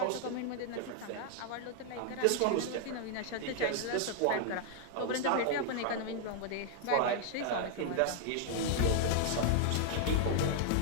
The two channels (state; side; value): different; both; correlation 0.00